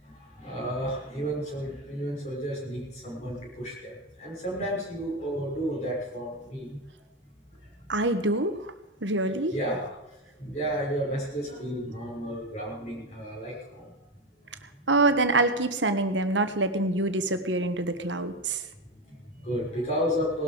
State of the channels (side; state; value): both; normal; correlation 0.15